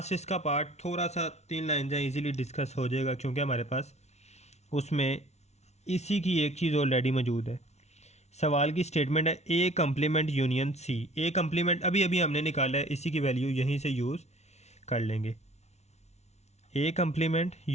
इसका पार्ट थोड़ा सा 3 लाइन जहाँ इजीली डिस्कस हो जाएगा, क्योंकि हमारे पास उसमें इसी की एक चीज़ ऑलरेडी मौजूद है। सवाल की स्टेटमेंट है A complement union C. A complement अभी अभी हमने निकाला है, इसी की वैल्यू यहीं से यूज़ कर लेंगे। A complement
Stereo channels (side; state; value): right; late; 0.32 ms